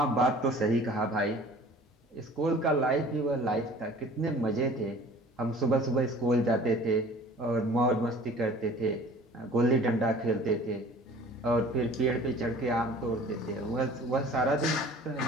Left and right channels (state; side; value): normal; both; correlation 0.47